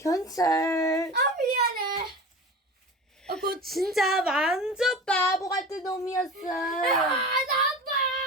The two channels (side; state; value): both; normal; correlation 0.33